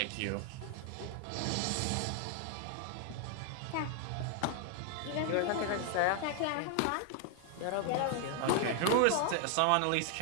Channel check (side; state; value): both; different; correlation 0.00